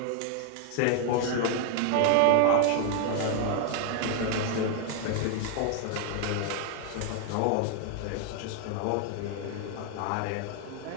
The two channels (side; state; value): both; different; correlation 0.00